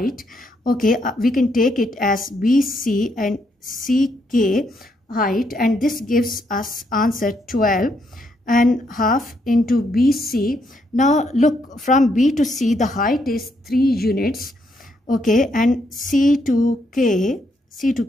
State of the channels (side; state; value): both; normal; correlation 0.76